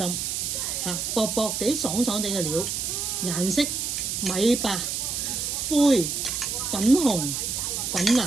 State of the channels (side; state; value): right; noise; hiss, 2 dB below the sound